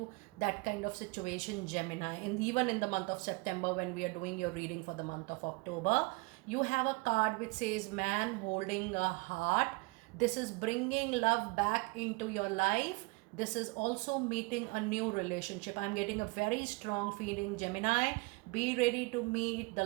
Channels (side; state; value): left; quieter; 26.8 dB